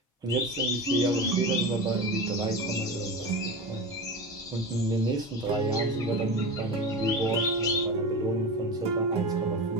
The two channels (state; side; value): normal; both; correlation 0.26